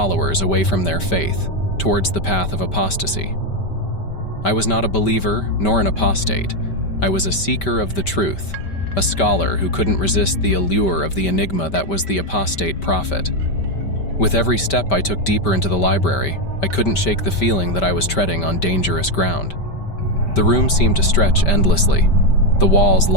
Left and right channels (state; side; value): late; right; 5.1 ms